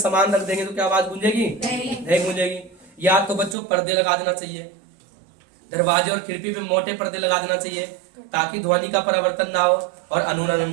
रख देंगे तो क्या आवाज गूंजेगी, नहीं गूंजेगी। या तो बच्चों पर्दे लगा देना चाहिए, दरवाजे और खिड़की पे मोटे पर्दे लगा देना चाहिए ताकि ध्वनि का परिवर्तन ना हो और अनुरणन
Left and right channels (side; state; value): left; drops out; at 3.6 s